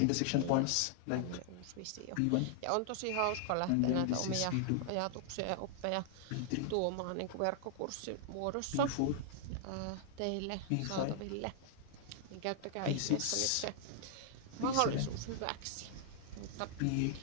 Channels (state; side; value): different; both; correlation 0.00